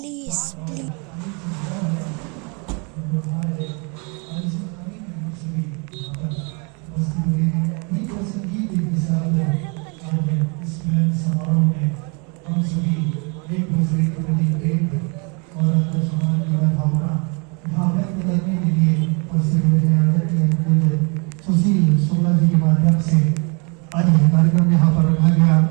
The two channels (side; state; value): left; quieter; 33.2 dB